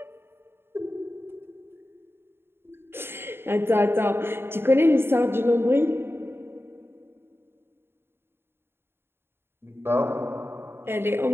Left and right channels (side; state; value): left; late; 0.11 ms